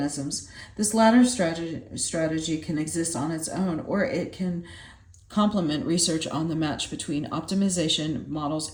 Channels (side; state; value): both; identical; correlation 1.00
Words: This latter strategy can exist on its own, or it can complement research on the match between optimization models